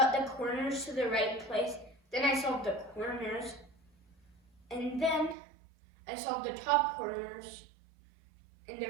the corners to the right place. Then I solved the corners, and then I solved the top corners in the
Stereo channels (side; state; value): left; drops out; at 5.4 s